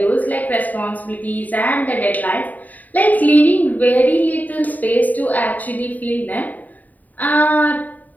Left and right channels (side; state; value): right; late; 0.080 ms